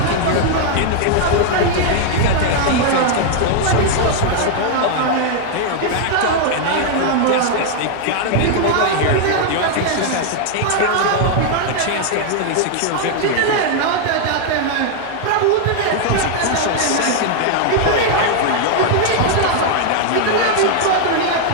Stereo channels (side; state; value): both; different; correlation 0.00